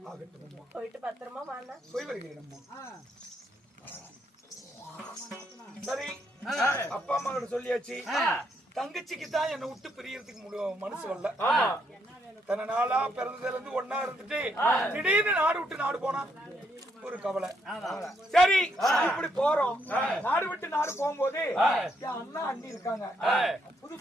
போயிட்டு பத்திரமா வாங்க. போய் வருகிறேன். சரி, அப்பா அம்மா கிட்ட சொல்லியாச்சு. தங்கச்சிக்கு தான் என்னை விட்டு பிரியறதுக்கு மனசு வரல. தன்னை நாளா பிறந்ததுல இருந்து ஒன்னா இருந்துட்டு திடீர்னு நாடு விட்டு நாடு போனா ஒரு கவலை. சரி, இப்படி போறோம். நாடு விட்டு நாடு போகும்போது என் அண்ணா அண்ணி இருக்காங்க, புது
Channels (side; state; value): both; normal; correlation 0.75